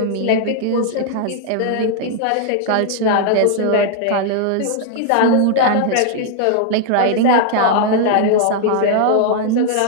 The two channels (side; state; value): both; different; correlation 0.00